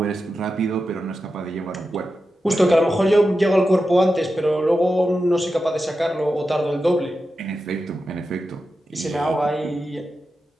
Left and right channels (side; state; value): both; normal; correlation 0.91